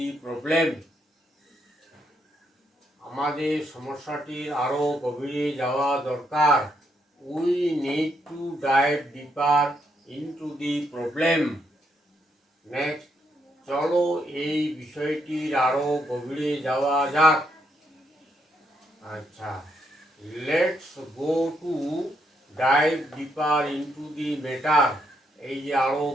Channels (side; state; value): both; normal; correlation 0.76